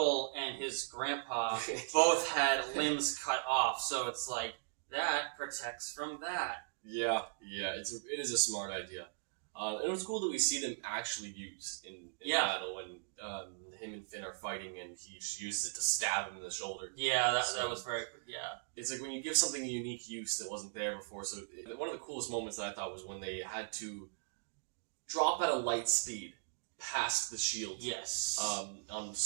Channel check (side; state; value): left; silent; digital silence